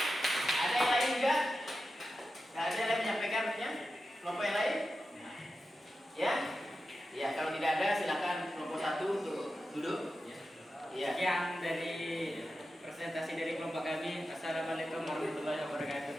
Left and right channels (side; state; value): both; normal; correlation 0.91